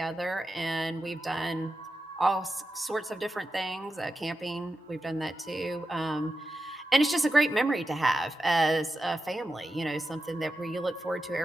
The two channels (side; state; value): both; normal; correlation 0.90